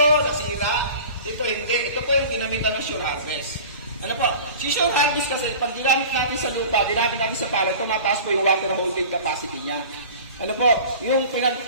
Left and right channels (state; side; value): inverted; both; correlation -0.40